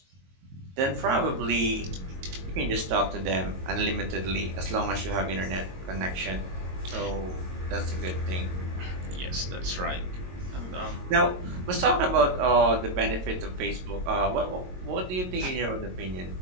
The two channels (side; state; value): left; late; 22 ms